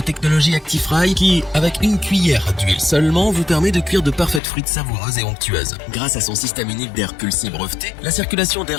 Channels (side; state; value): right; drops out; at 4.4 s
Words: technologie Actifry qui, avec une cuillère d'huile seulement, vous permet de cuire de parfaites frites savoureuses et onctueuses. Grâce à son système unique d'air pulsé breveté, la circulation